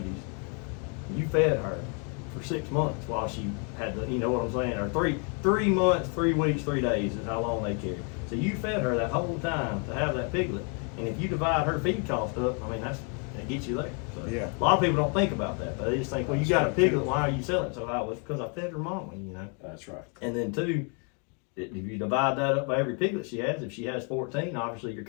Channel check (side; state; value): right; quieter; 38.2 dB